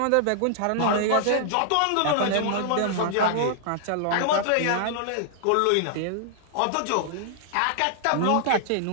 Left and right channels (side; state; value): both; different; correlation -0.01